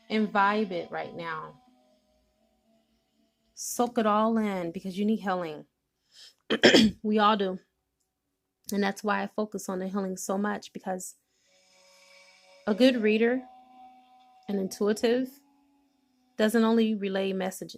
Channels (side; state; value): both; identical; correlation 1.00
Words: imbibe it right now. Soak it all in because you need healing. We all do. And that's why I focus on the healing so much, because a good reader, an intuitive, doesn't only relay